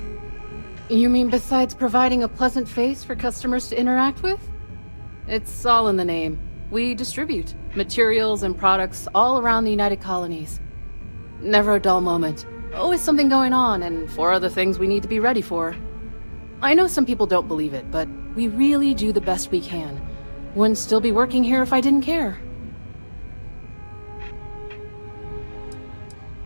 You mean besides providing a pleasant face for customers to interact with? It's all in the name. We distribute materials and products all around the United Colonies. Never a dull moment. Always something going on, and 4 other things we need to be ready for. I know some people don't believe it, but we really do the best we can. Wouldn't still be working here if I didn't care.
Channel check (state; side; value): inverted; both; correlation -1.00